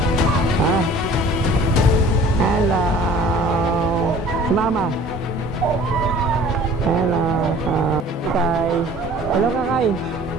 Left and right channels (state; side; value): normal; both; correlation 0.49